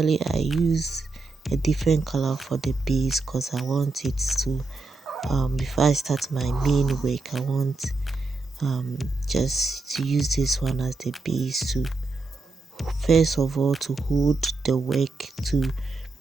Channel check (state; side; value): quieter; left; 3.6 dB